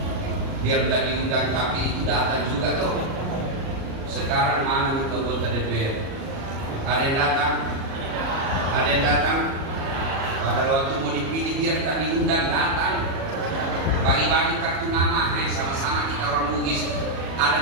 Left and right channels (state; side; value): late; left; 37 ms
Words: biar tidak diundang tapi itu datang juga toh. Sekarang mana itu anggota DPR? Ada yang datang? Ada yang datang? Pada waktu mau dipilih biar tak diundang datang. Bagi-bagi kartu nama, sama-sama kita orang Bugis.